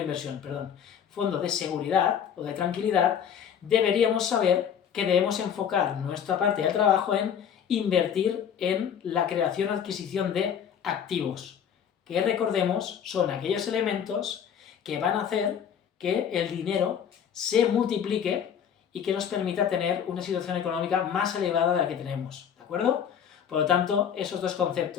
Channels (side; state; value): right; quieter; 8.4 dB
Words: perdón, fondo de seguridad o de tranquilidad, deberíamos saber que debemos enfocar nuestra parte de trabajo en invertir en la creación o adquisición de activos, que recordemos son aquellos elementos que van a hacer que el dinero se multiplique y que nos permita tener una situación económica más elevada de la que tenemos, ¿de acuerdo? Por lo tanto, esos dos